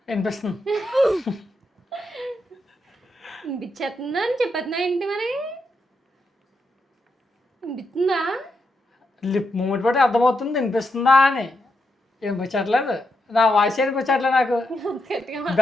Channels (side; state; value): both; normal; correlation 0.83